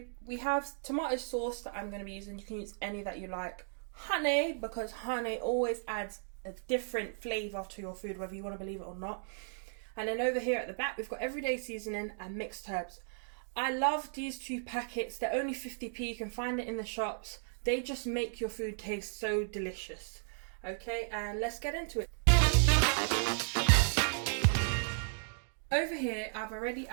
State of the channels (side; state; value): left; silent; digital silence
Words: we have tomato sauce that I'm going to be using. You can use any that you like. Honey, because honey always adds a different flavour to your food, whether you want to believe it or not. And then over here at the back, we've got everyday seasoning and mixed herbs. I love these 2 packets. They're only 50p. You can find it in the shops. They just make your food taste so delicious. Okay, and let's get into it. Over here, I've already